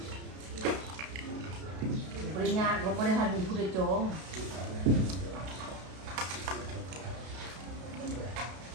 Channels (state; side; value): late; left; 33 ms